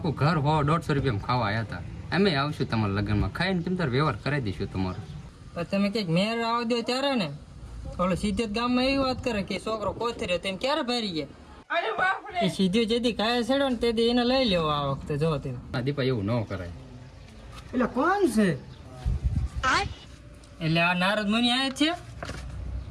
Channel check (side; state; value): both; identical; correlation 1.00